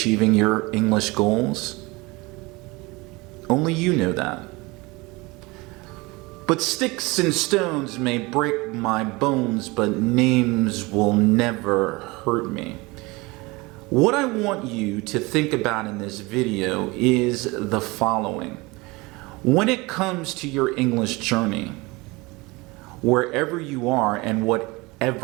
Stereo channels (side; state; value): left; quieter; 24.0 dB